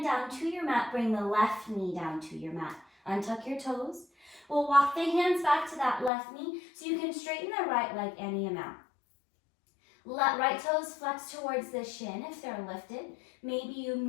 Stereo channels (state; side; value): drops out; right; at 6.1 s